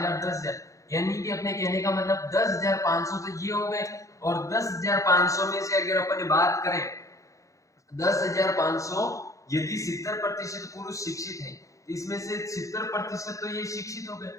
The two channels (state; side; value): late; right; 0.15 ms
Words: 10,000, यानी कि अपने कहने का मतलब 10,500 तो ये हो गए। और 10,500 में से अगर अपन बात करें, 10,500 यदि 70% पुरुष शिक्षित है, इसमें से 70% तो ये शिक्षित हो गए।